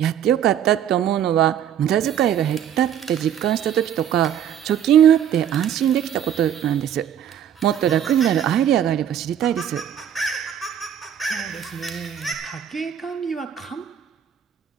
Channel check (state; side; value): quieter; left; 9.6 dB